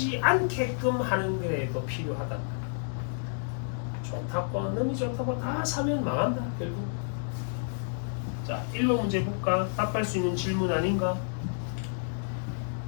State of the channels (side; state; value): right; silent; digital silence